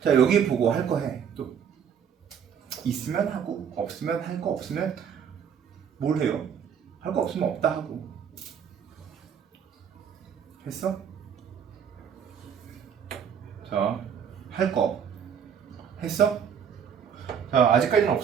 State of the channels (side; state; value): left; quieter; 7.8 dB